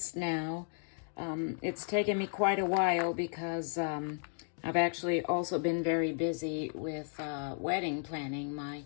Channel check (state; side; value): silent; right; 55 dB below the other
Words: now. It's taken me quite a while because I've actually also been very busy with wedding planning. My